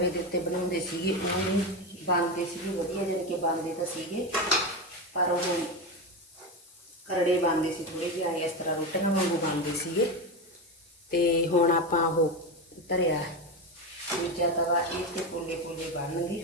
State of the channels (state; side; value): normal; both; correlation 0.17